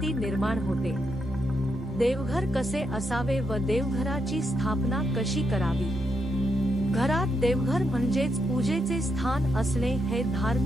निर्माण होते। देवघर कसे असावे व देवघराची स्थापना कशी करावी। घरात देवघर म्हणजेच पूजेचे स्थान असणे हे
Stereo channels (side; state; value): both; normal; correlation 0.81